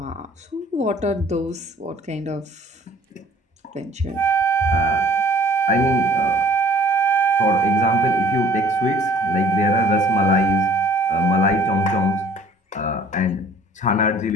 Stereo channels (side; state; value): both; normal; correlation 0.53